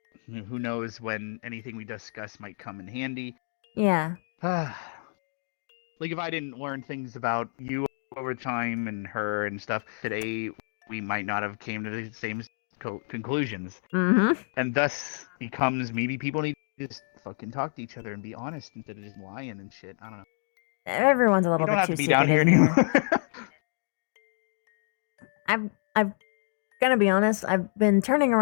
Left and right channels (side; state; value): right; silent; 59 dB below the other